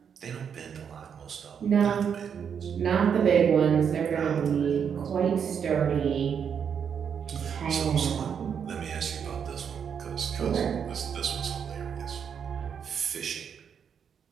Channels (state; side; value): quieter; left; 7.4 dB